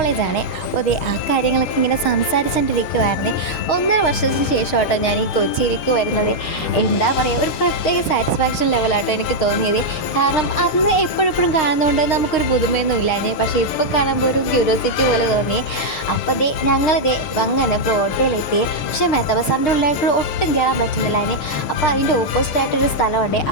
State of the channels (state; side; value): late; right; 6.8 ms